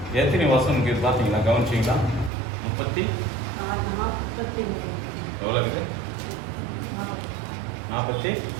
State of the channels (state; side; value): drops out; left; at 2.3 s